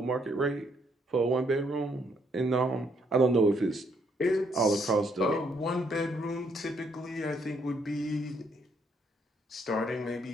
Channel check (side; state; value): both; normal; correlation 0.71